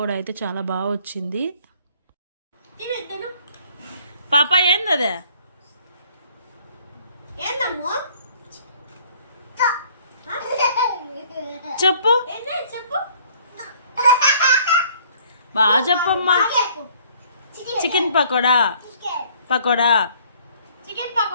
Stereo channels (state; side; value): inverted; both; correlation -0.58